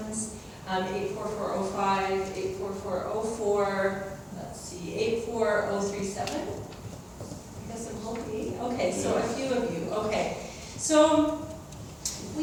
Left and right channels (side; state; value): both; identical; correlation 1.00